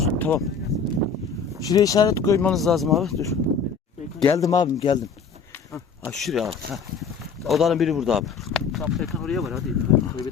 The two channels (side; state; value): right; quieter; 5.6 dB